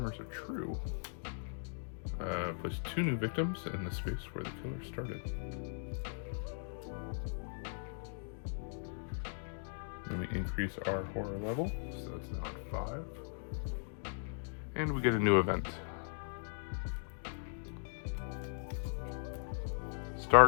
are true. Place 2 new victims in the space where the killer started. Then we increase our horror level, so it's now at 5. And we get a new event.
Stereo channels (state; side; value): silent; right; digital silence